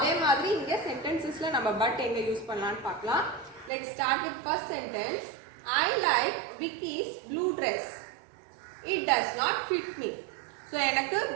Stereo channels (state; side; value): drops out; left; at 3.7 s